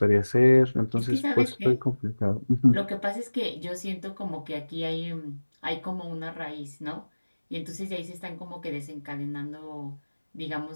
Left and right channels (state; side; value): inverted; both; correlation -1.00